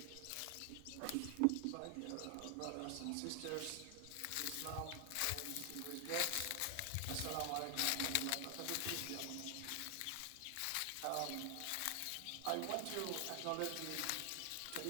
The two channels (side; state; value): both; different; correlation 0.00